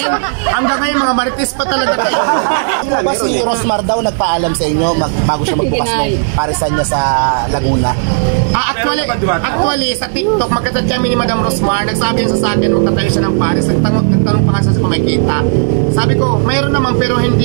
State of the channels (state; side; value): silent; left; digital silence